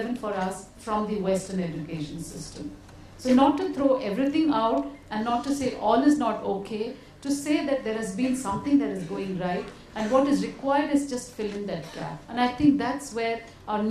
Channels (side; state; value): both; identical; correlation 1.00